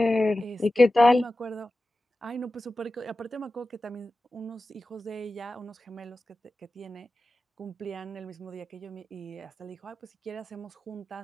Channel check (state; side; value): normal; both; correlation 0.94